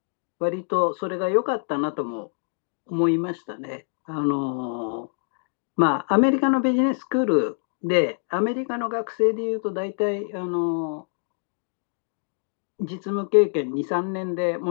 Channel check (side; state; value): right; silent; digital silence